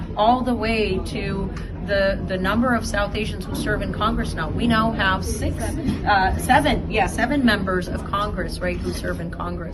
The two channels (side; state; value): both; identical; correlation 1.00